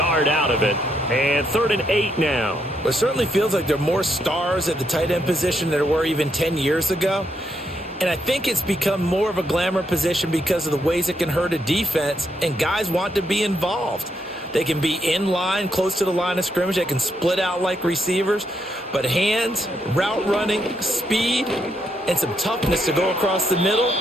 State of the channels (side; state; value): both; normal; correlation 0.78